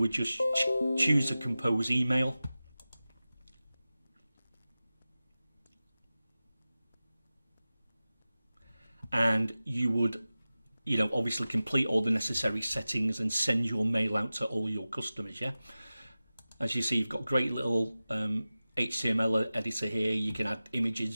would just choose to compose email. And you would, you know, obviously complete all the necessary settings and send your mail out to all your customers, yeah? As you see, you've got a great little HTML editor here. You can add images,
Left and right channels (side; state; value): both; inverted; correlation -0.96